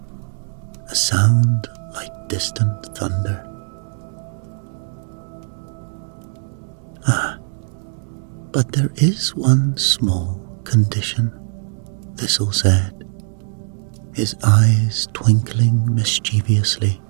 a sound like distant thunder. "Ah, but there is one small condition," Thistle said, his eyes twinkling mischievously.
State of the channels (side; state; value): left; silent; digital silence